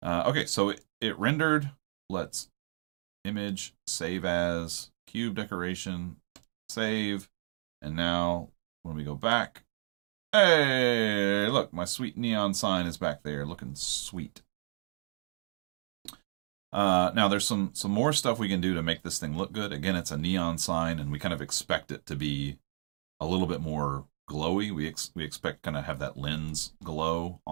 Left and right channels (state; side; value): silent; left; digital silence